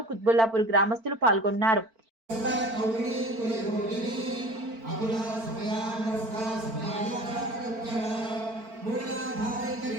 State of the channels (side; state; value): left; late; 4.5 ms